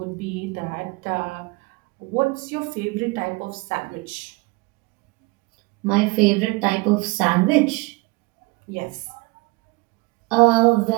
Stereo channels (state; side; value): quieter; left; 24.0 dB